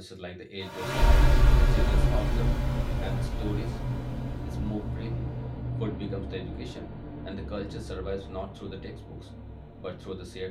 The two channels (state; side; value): identical; both; correlation 1.00